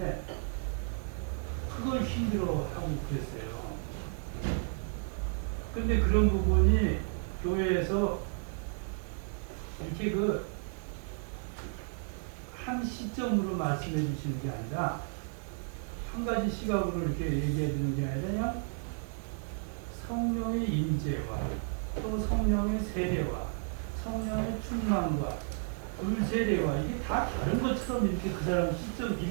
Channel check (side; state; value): left; silent; 56 dB below the other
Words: 그걸 힘들어하고 그랬어요. 근데 그런 부분이 교회에서 이렇게 한 시점으로 말씀해 주시는 게 아니라 한 가지 시각으로 이렇게 얘기해 주는 게 아니라 그냥 성령의 임재와 또 성령의 세례와 성령의 충만과 불세례와 이게 다 다른 것처럼 이렇게 그 사람 시점